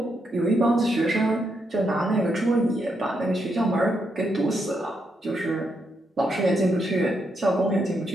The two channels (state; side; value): normal; both; correlation 0.80